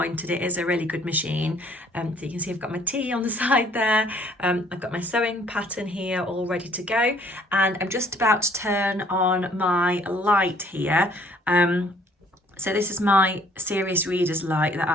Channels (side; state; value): both; normal; correlation 0.60